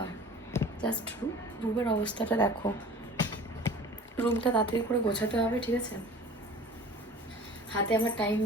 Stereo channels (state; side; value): normal; both; correlation 0.44